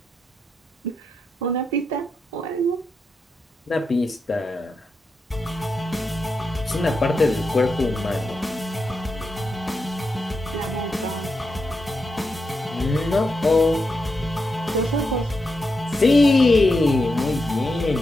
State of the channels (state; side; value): normal; both; correlation 0.86